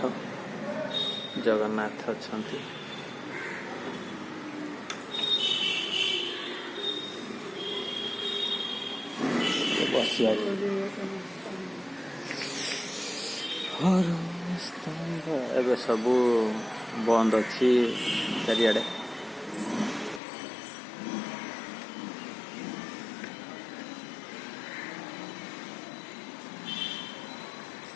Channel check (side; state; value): right; drops out; at 20.2 s